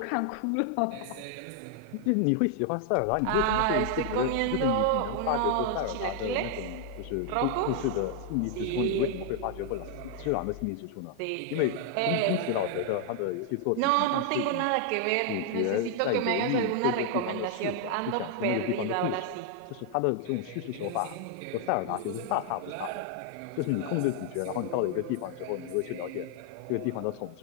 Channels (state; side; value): different; both; correlation 0.00